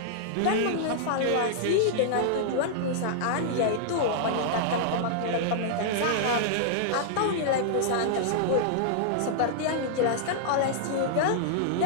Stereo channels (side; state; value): both; different; correlation -0.01